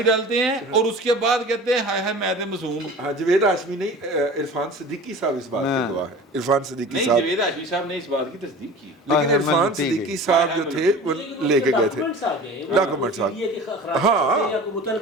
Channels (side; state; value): both; normal; correlation 0.39